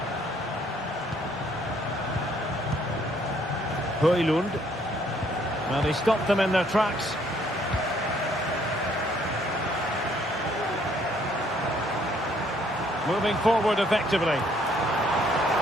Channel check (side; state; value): both; normal; correlation 0.65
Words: Højlund. Well, he stopped them in their tracks. Moving forward effectively.